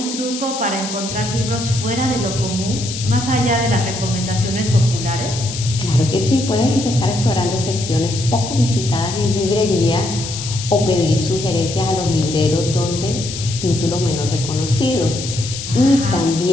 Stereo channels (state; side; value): noise; left; hiss, 8 dB below the sound